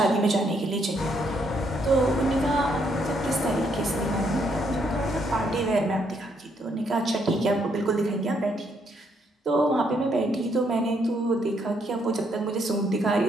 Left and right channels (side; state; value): both; normal; correlation 0.73